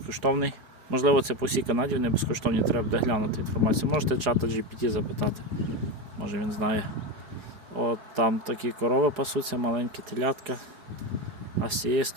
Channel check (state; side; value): late; left; 4.8 ms